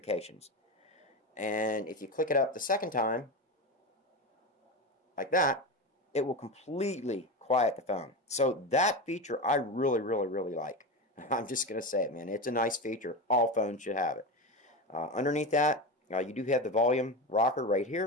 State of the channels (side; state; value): both; normal; correlation 0.21